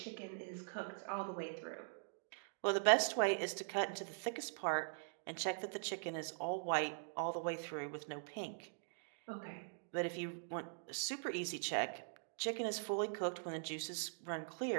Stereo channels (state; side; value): silent; left; digital silence